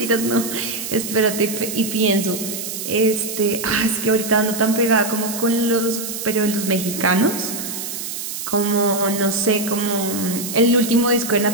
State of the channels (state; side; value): noise; right; hiss, 6 dB below the sound